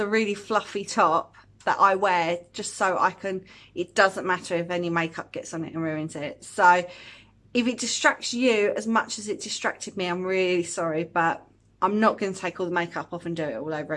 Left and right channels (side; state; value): both; identical; correlation 1.00